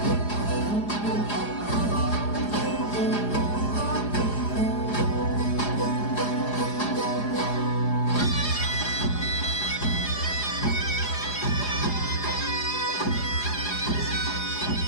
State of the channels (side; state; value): right; late; 4.8 ms